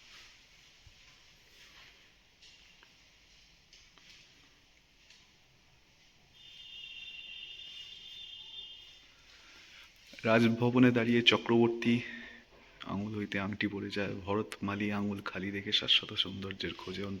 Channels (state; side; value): identical; both; correlation 1.00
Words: রাজভবনে দাঁড়িয়ে চক্রবর্তী আঙুল হইতে আংটি পড়ে যায়, ভরতমালী আঙুল খালি রেখে শাশ্বত সৌন্দর্যের খোঁজে